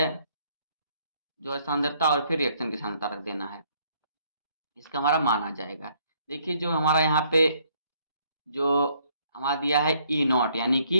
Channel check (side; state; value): both; inverted; correlation -0.66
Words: सांद्रता, और फिर रिएक्शन की सांद्रता रख देना है, इसका हमारा मान आ जाएगा। देखिए जो हमारा यहाँ पे जो हमारा दिया है ई नॉट, यानी